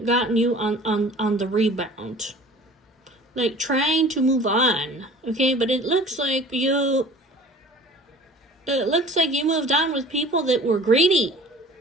gotten you on the rebound. like trying to move on, okay? But it looks like you moved on with people that were greedy,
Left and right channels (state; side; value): normal; both; correlation 0.46